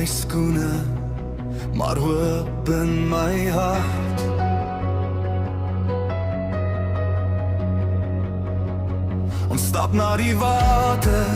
skoene, maar hoop in my hart. Ons stap na die water,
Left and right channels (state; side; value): identical; both; correlation 1.00